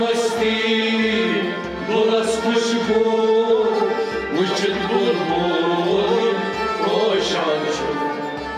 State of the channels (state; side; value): identical; both; correlation 1.00